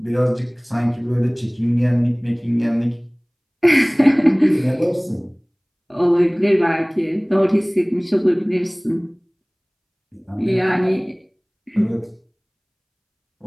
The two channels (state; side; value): identical; both; correlation 1.00